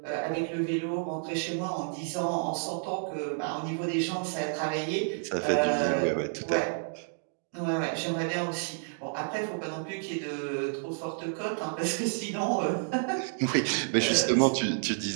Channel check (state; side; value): silent; left; 58 dB below the other